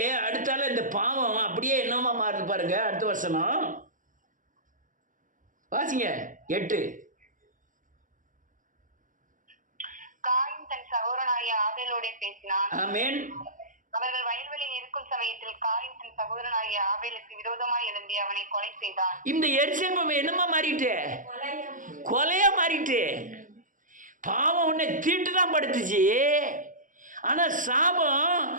அடுத்தால இந்த பாவம் அப்படியே என்னமா மாறுது பாருங்க. அடுத்த வசனம் வாசிங்க. 8. சகோதரனாகிய ஆபேலோடே பேசினான். ஆமென். அவர்கள் வயல்வெளியில் இருக்கும் சமயத்தில் காயின் தன் சகோதரனாகிய ஆபேலுக்கு விரோதமாய் எழும்பி அவனை கொலை செய்தான். இந்த எரிச்சல் என்னமா மாறிட்டு? கொலையா மாறிட்டு. பாவம் உன்னை தீட்டு தான் படுத்துச்சு. ஆனா சாபம்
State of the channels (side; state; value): left; late; 0.38 ms